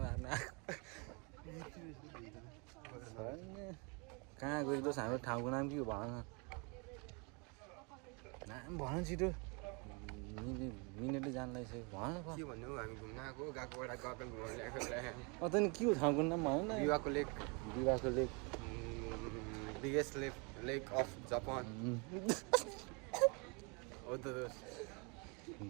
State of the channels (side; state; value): left; quieter; 32.0 dB